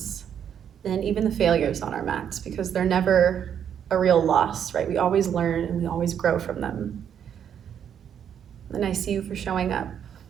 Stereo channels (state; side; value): quieter; left; 8.7 dB